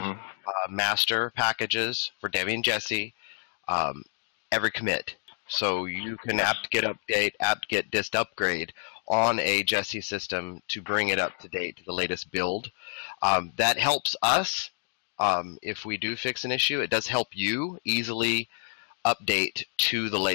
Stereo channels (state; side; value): silent; right; digital silence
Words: master packages for Debbie and Jesse every commit. So you can apt-get update, apt-get dist upgrade on a Jesse system to bring it up to date to the latest build. That helps us if we do fix an issue. It does help you easily update to the